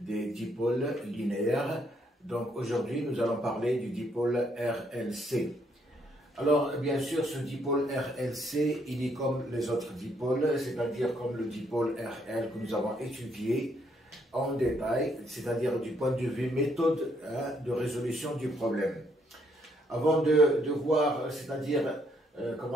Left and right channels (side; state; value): both; normal; correlation 0.71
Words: dipôles linéaires. Donc, aujourd'hui, nous allons parler du dipôle RLC. Alors, bien sûr, ce dipôle RLC, il est comme les autres dipôles, c'est-à-dire comme le dipôle RL que nous avons étudié en détail, c'est-à-dire du point de vue méthode de résolution du problème. Avant de voir, c'est-à-dire,